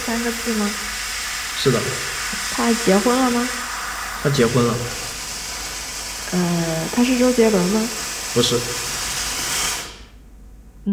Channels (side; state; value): both; identical; correlation 1.00